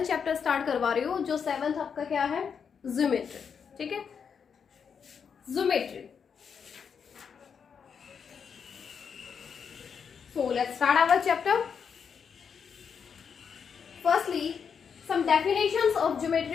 चैप्टर स्टार्ट करवा रही हूँ. जो 7th आपका क्या है? ज्योमेट्री. ठीक है, geometry. So let's start our chapter. Firstly, some definitions of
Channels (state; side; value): quieter; right; 6.7 dB